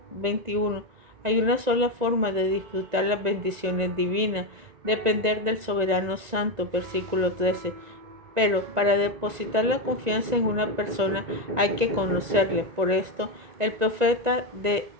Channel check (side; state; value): left; late; 1.9 ms